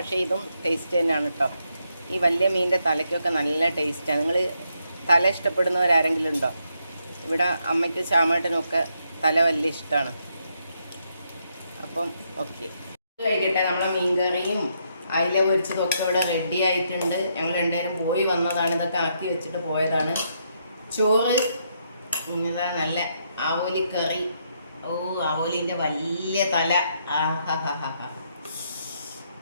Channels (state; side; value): inverted; both; correlation -0.77